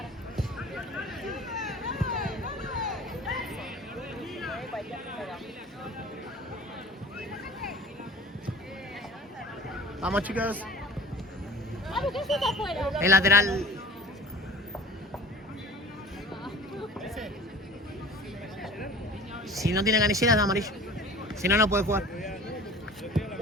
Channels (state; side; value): normal; both; correlation 0.43